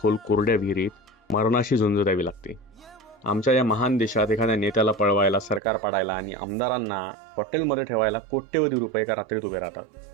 कोरड्या विहिरीत मरणाशी झुंज द्यावी लागते. आमच्या या महान देशात एखाद्या नेत्याला पळवायला, सरकार पाडायला आणि आमदारांना हॉटेलमध्ये ठेवायला कोट्यवधी रुपये एका रात्रीत उभे राहतात.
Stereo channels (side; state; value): left; drops out; at 5.6 s